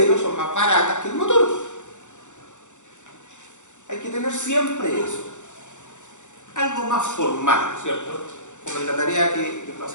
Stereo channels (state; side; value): late; right; 0.85 ms